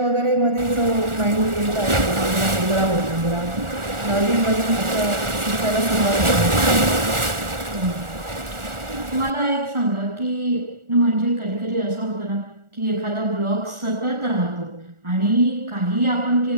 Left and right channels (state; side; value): late; left; 1.4 ms